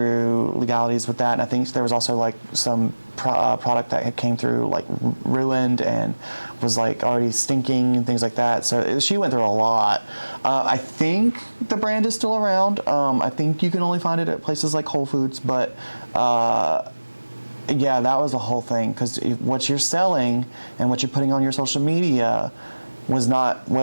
legalities with that. And I think there was also like some product that had came through like ruined and was like already stinking and things like that. So she went through a lot. I think the brand is still around. I think you can only find it at places like Whole Foods, but yeah, that was the whole thing, because what you're selling and what you're putting on your social media was not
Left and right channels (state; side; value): inverted; both; correlation -1.00